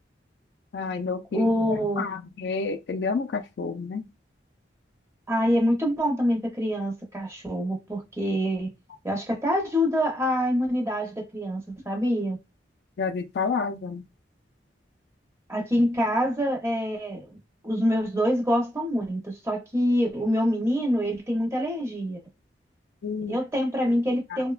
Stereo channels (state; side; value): normal; both; correlation 0.77